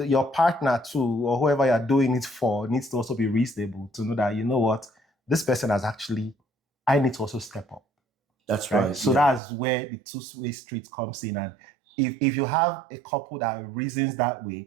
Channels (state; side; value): drops out; left; at 9.4 s